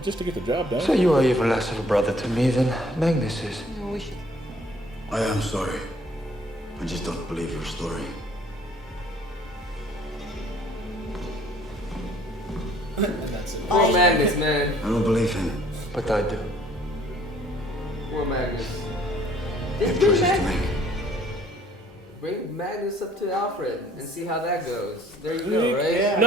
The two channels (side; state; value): both; normal; correlation 0.58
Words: just to get the job done. So you are even less of a brother to me than Magnus is. I am sorry. I just don't believe your story. Poor Magnus, man. I don't believe him. But I do. Poor Magnus. I have choices to make. Bring Magnus up to Alfred and see how that goes. There you go, right? Yeah,